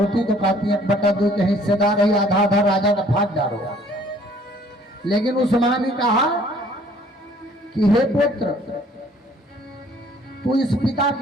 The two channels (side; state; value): both; normal; correlation 0.58